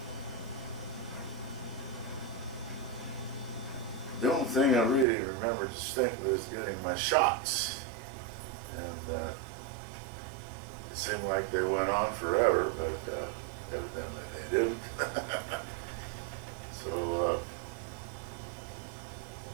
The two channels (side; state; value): left; drops out; at 5.1 s